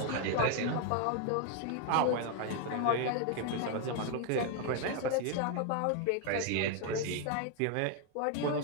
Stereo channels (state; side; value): different; both; correlation 0.01